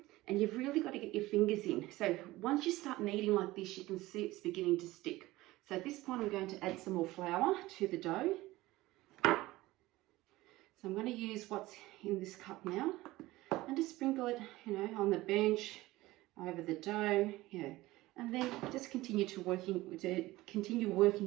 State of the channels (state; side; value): quieter; left; 18.4 dB